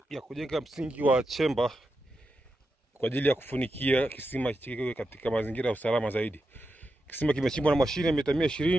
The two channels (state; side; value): normal; both; correlation 0.88